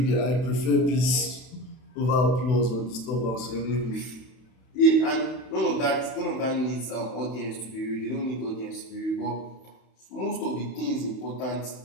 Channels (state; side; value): late; right; 31 ms